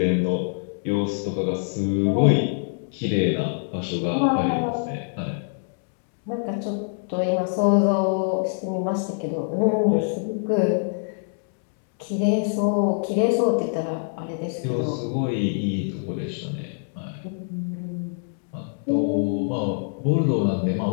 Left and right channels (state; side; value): silent; right; digital silence